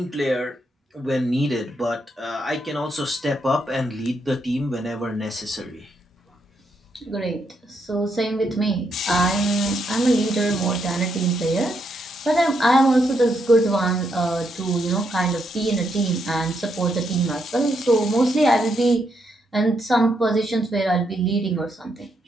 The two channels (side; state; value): both; normal; correlation 0.78